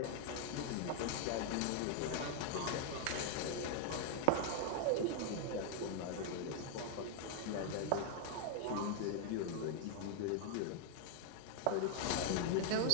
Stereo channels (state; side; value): different; both; correlation 0.00